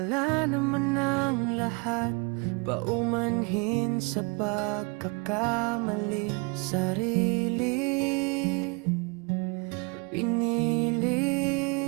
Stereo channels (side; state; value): left; quieter; 31.8 dB